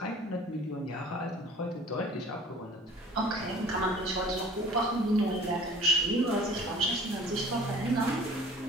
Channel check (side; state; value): both; normal; correlation 0.46